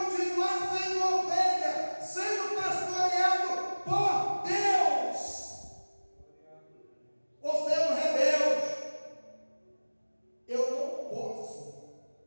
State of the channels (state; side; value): inverted; both; correlation -1.00